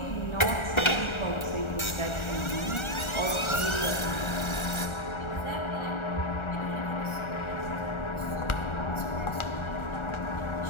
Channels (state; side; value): late; right; 1.4 ms